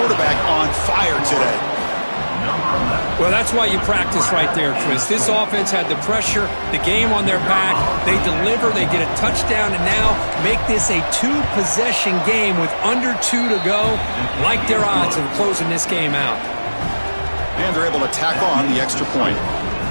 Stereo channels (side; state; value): both; inverted; correlation -1.00